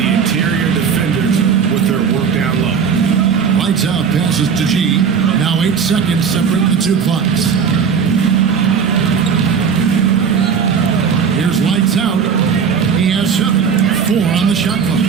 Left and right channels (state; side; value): quieter; left; 6.5 dB